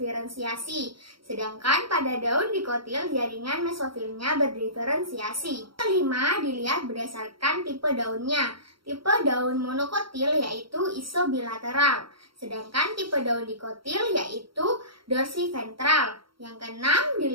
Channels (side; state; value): left; late; 0.74 ms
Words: sedangkan pada daun dikotil, jaringan mesofilnya berdiferensiasi. Kelima, dilihat berdasarkan tipe daunnya. Tipe daun monokotil yaitu isobilateral, sedangkan tipe daun dikotil yaitu dorsiventral. Yang keenam,